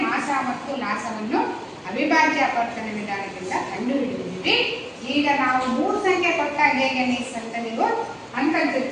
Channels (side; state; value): both; identical; correlation 1.00